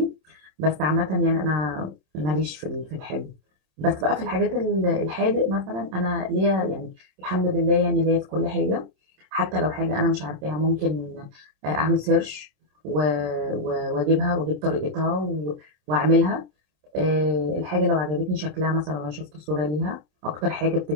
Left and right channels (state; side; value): late; left; 27 ms